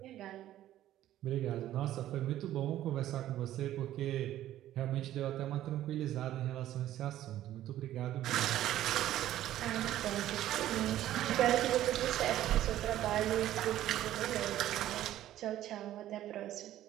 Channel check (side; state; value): left; quieter; 13.2 dB